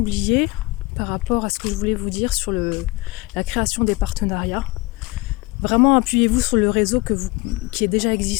par rapport à ce que je voulais vous dire sur la création des partenariats. Vraiment appuyez-vous sur le réseau qui est déjà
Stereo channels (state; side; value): quieter; right; 22.5 dB